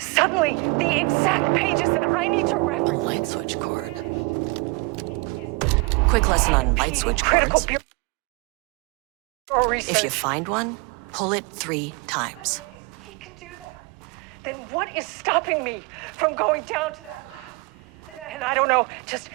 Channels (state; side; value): quieter; left; 27.8 dB